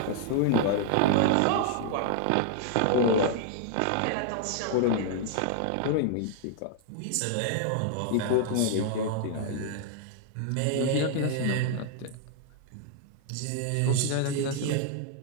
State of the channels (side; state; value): both; different; correlation 0.00